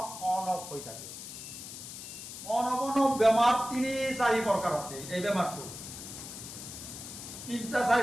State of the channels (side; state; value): left; noise; hiss, 11 dB below the sound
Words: অফ হৈ থাকে। অন অফ বেমাৰ ৩-৪ প্ৰকাৰ আছে। এই বেমাৰটো